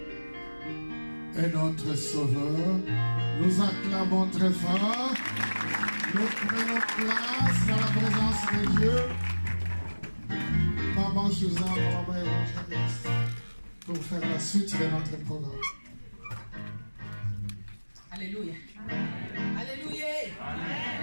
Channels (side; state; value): both; inverted; correlation -1.00